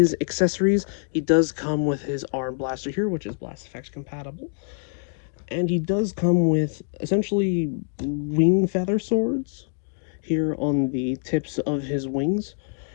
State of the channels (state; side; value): silent; right; digital silence